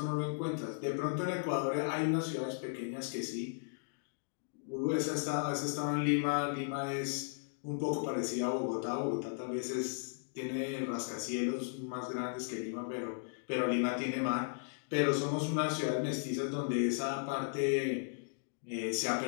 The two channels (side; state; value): right; silent; digital silence